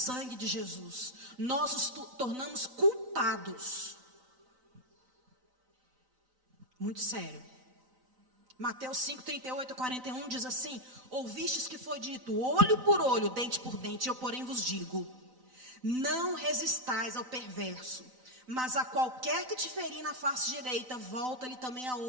de Jesus. Nós nos tornamos culpados. Muito sério. Mateus 5, 38 a 41 diz assim: ouvistes que foi dito, olho por olho, dente por dente, eu porém vos digo, não resistais ao perverso, mas a qualquer que te ferir na face direita, volta-lhe também a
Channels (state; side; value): late; left; 3.9 ms